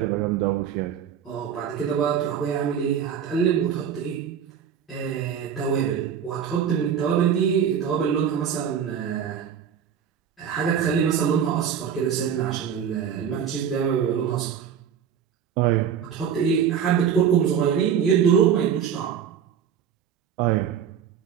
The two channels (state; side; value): quieter; left; 8.2 dB